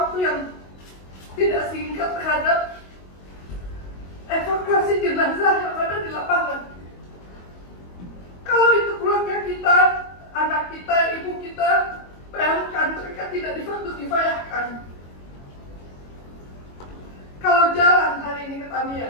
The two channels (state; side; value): late; right; 22 ms